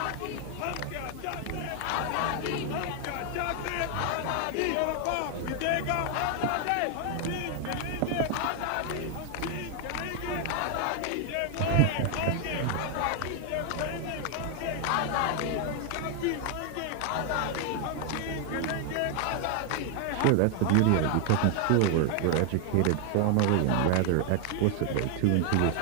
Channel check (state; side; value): different; both; correlation 0.00